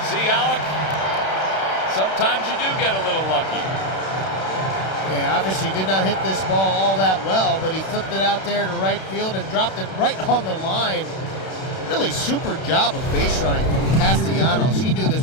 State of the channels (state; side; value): late; right; 31 ms